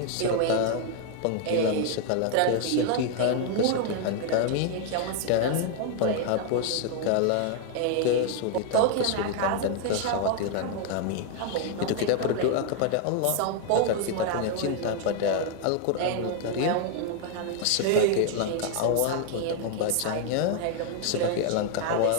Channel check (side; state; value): both; different; correlation 0.00